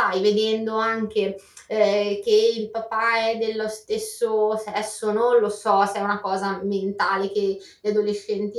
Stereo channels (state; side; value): identical; both; correlation 1.00